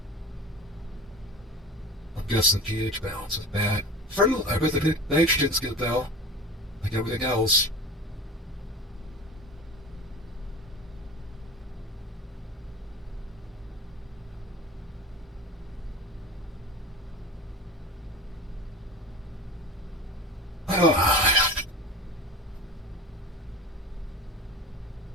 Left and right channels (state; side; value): normal; both; correlation 0.36